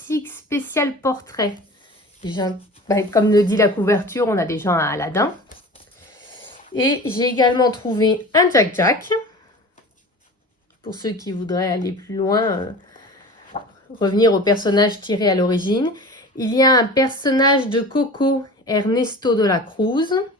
spécial portrait, comme le dit la couverture, on a déjà un Aladin. Et j'ai également trouvé un Jack Jack. Pour ceux qui voudraient aller plus loin, revenir au personnage tiré à l'origine. Il y a un personnage de Coco, Ernesto de la Cruz.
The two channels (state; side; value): normal; both; correlation 0.37